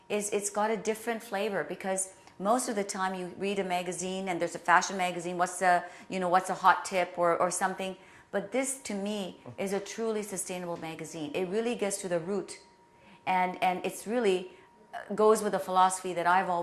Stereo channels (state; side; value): identical; both; correlation 1.00